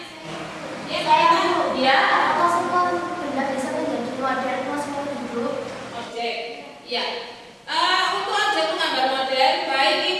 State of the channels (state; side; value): identical; both; correlation 1.00